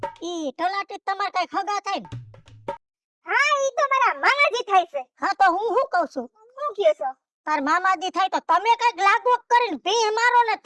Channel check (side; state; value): both; identical; correlation 1.00